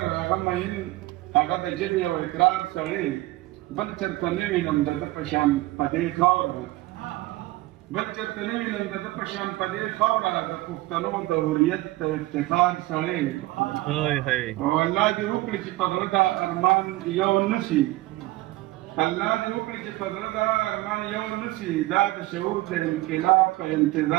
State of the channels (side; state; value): left; quieter; 18.6 dB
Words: هغه مهین هغه د ژبې او اقرار سړی بل چرته نه وینم د ده په شان په دې خاوره بل چرته نه وینم د ده په شان په دې خاوره د پښتنو د هویت د افتخار سړی او الله دې وکړي چې په زړه دا ارمان یو نه شي الله دې وکړي چې په زړه دا ارمان یو نه شي دا د شعور د انقلاب په